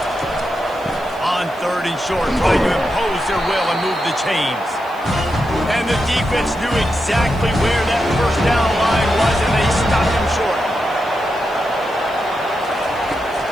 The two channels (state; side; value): noise; right; hiss, 26 dB below the sound